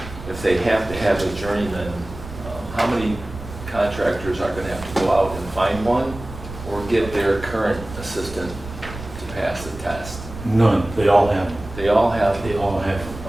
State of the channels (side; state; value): right; noise; rumble, 13 dB below the sound